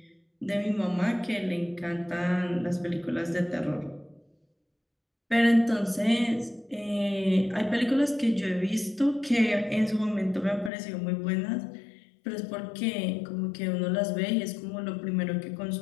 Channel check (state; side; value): drops out; right; at 10.7 s